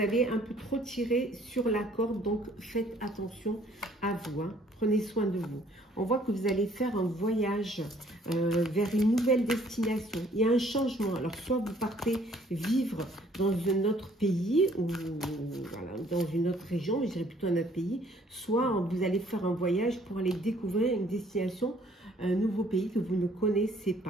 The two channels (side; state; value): both; normal; correlation 0.60